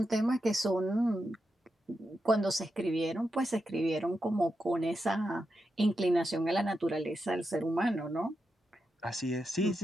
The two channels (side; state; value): both; normal; correlation 0.87